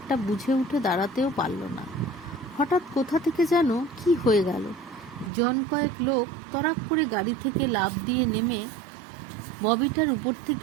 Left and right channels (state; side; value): drops out; left; at 5.3 s